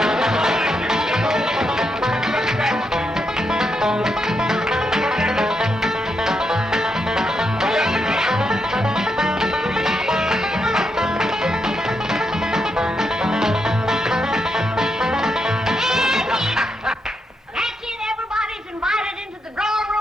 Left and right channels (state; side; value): normal; both; correlation 0.82